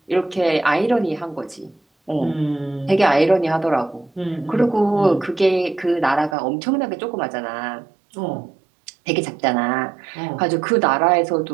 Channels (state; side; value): drops out; left; at 6.4 s